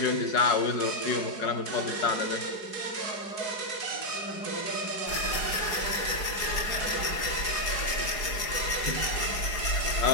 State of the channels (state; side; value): late; right; 4.8 ms